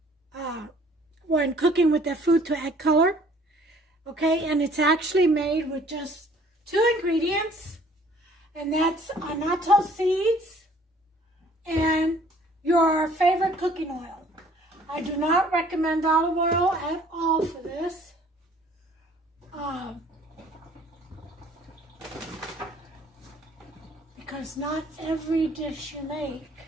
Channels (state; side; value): normal; both; correlation 0.56